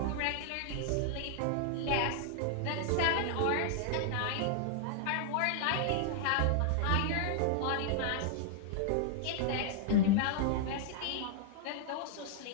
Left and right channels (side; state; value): both; different; correlation -0.01